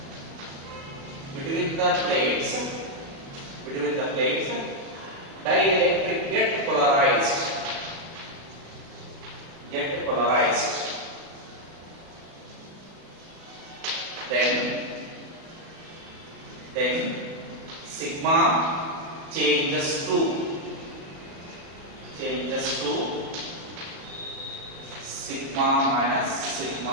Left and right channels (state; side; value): late; left; 36 ms